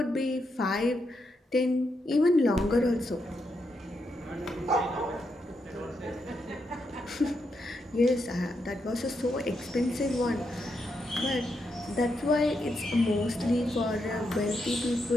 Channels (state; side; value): normal; both; correlation 0.82